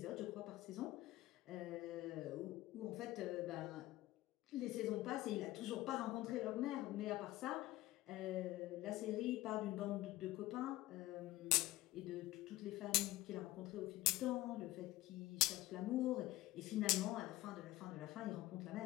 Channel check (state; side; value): quieter; right; 17.1 dB